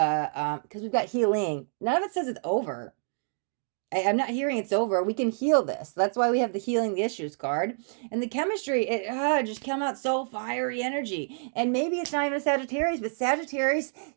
we've got healing. None of it says it's over. I'm not hearing it's over. We can heal this. That's why we have the healing the issues card. And the chemistry, it just come out so fiery energy. And maybe it's not even Sagittarius, but Sagittarius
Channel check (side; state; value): left; silent; digital silence